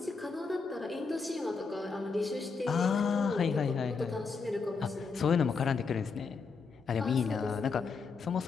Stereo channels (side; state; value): right; quieter; 4.9 dB